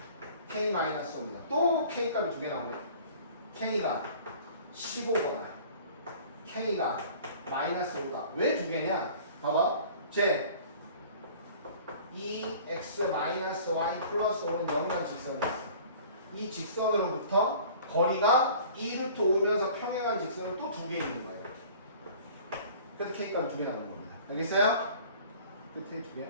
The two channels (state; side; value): inverted; both; correlation -0.47